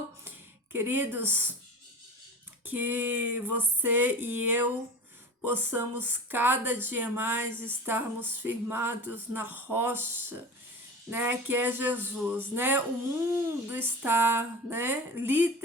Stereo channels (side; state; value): both; normal; correlation 0.33